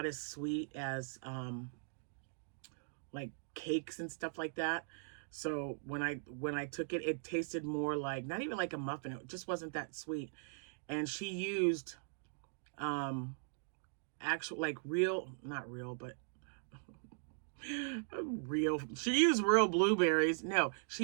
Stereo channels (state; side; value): silent; left; digital silence